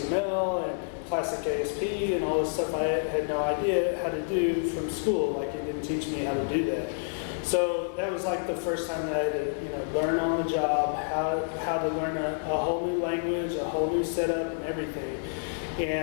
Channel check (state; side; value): silent; right; digital silence